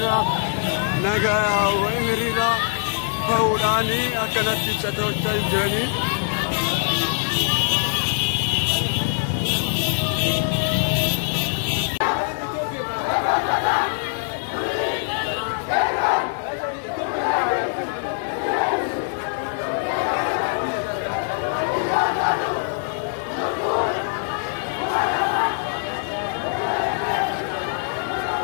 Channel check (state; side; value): silent; right; 57 dB below the other